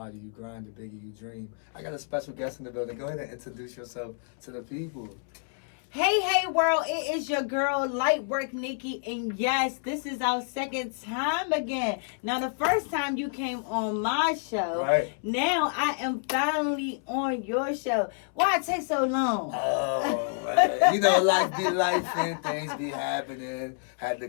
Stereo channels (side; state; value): right; silent; 58 dB below the other